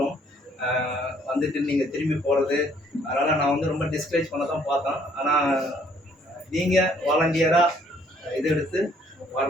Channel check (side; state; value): both; normal; correlation 0.63